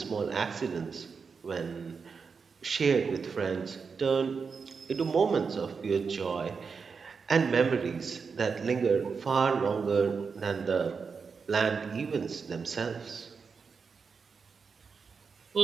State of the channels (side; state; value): left; quieter; 5.4 dB